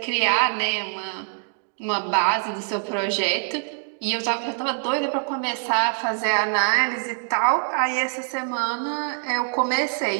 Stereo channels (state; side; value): silent; left; digital silence